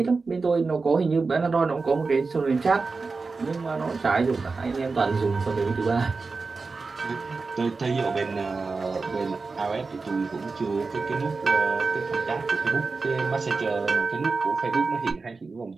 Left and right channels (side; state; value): left; quieter; 4.2 dB